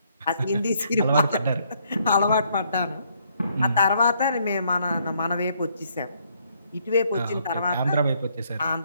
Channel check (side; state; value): both; inverted; correlation -0.69